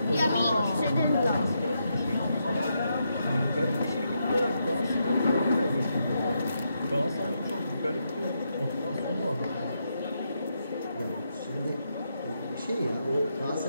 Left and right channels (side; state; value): both; inverted; correlation -0.81